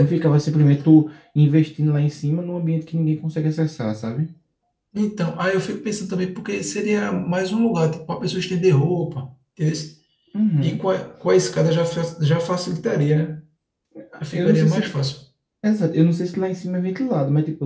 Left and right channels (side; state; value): both; identical; correlation 1.00